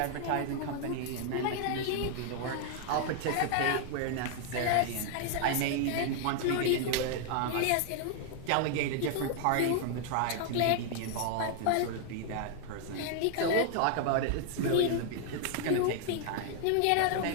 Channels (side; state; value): both; different; correlation 0.00